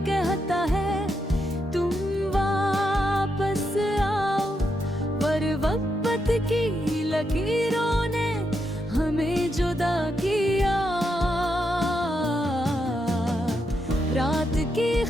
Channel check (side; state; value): both; normal; correlation 0.82